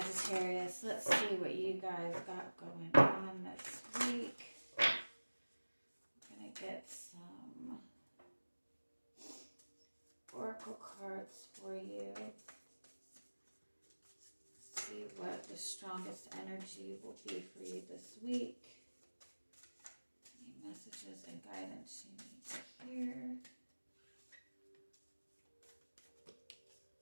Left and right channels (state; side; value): inverted; both; correlation -1.00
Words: let's see what you guys got going on this week. Get some oracle cards for you. See what the strongest energy will be for you this week. Any messages and guidance you need to hear.